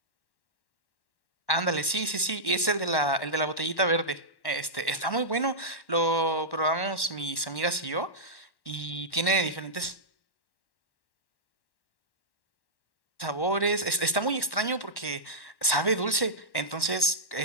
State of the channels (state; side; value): late; right; 1.1 ms